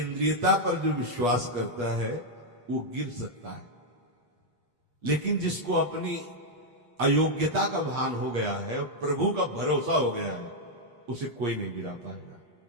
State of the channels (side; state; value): left; late; 8.4 ms